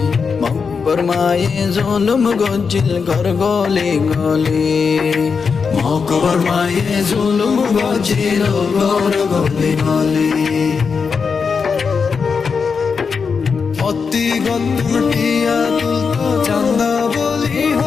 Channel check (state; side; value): quieter; right; 5.5 dB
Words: মকবর মায়ে জুলুম গজিল গর গলি গলি। মকবর মায়ে জুলুম গজিল গর গলি গলি। অতি গন্টিয়া তুলতো চান্দা বলি